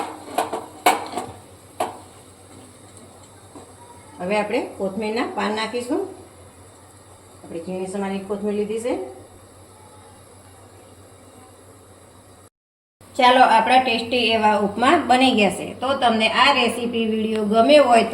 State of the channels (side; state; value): both; identical; correlation 1.00